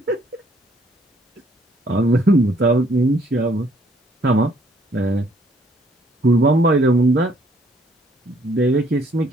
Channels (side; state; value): both; normal; correlation 0.65